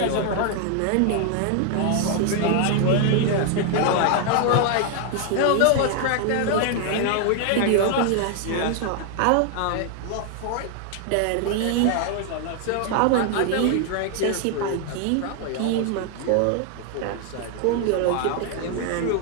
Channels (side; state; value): both; different; correlation 0.00